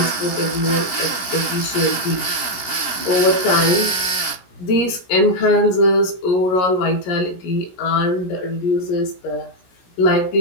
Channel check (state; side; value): late; right; 17 ms